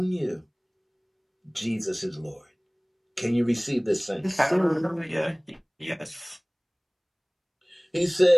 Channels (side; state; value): both; identical; correlation 1.00